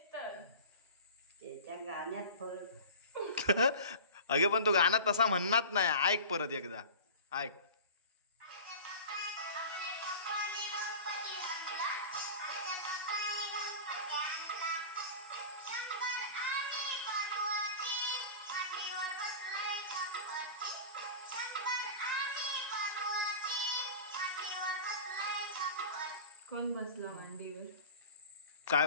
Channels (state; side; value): inverted; both; correlation -0.34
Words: तर त्याच्या गाण्यात फरक. अगे पण तो गाणं तसा म्हणणार नाही. ऐक परत एकदा, ऐक. कोण बसला मांडीवर? काय